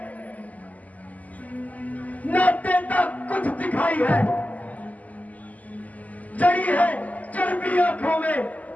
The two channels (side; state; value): right; late; 0.076 ms